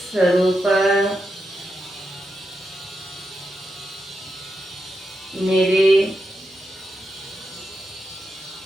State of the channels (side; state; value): both; normal; correlation 0.86